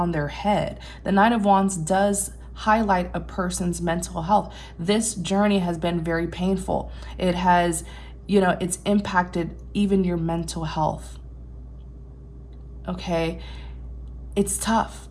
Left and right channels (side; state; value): both; identical; correlation 1.00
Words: their head. The Nine of Wands does highlight a person's mental health. This journey has been very painful. It has, it's impacted even your mental health. Okay, it's tough,